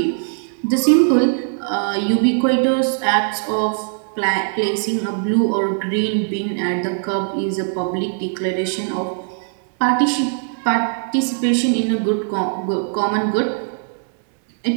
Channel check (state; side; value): silent; left; 66 dB below the other